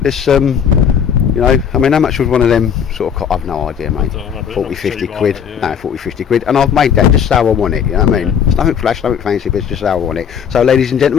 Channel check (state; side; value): quieter; right; 7.9 dB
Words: you know, I mean, how much would one of them sort of? I've no idea, mate. 40, 50 quid. No, 40, 50 quid. And I've made that just how I want it. You know what I mean? It's nothing flash, nothing fancy, but it's just how I want it. So, ladies and